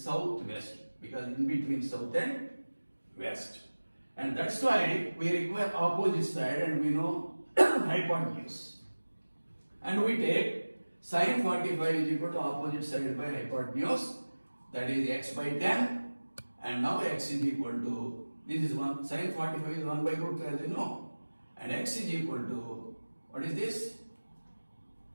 southwest, because in between south and west, and that's why we require opposite side, and we know hypotenuse, and we take sine 45 is equal to opposite side by hypotenuse, that is x by 10, and now x is equal to, this is 1, sine 45 is 1 by root 2 as you know, and x is equal to, what is this?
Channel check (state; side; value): inverted; both; correlation -1.00